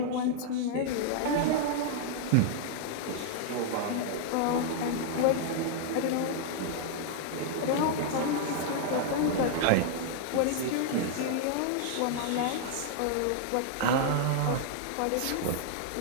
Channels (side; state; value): both; different; correlation -0.01